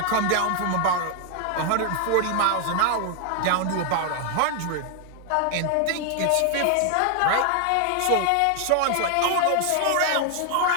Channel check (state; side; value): different; both; correlation 0.00